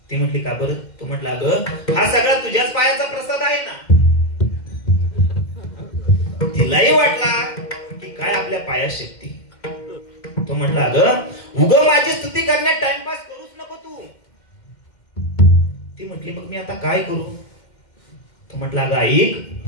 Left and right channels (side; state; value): right; late; 2.1 ms